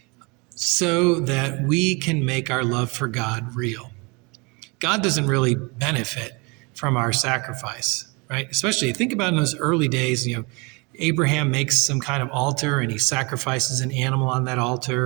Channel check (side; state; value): left; quieter; 29.1 dB